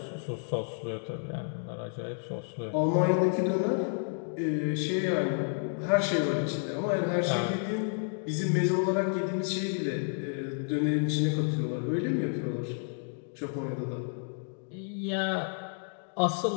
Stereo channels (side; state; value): right; silent; 57 dB below the other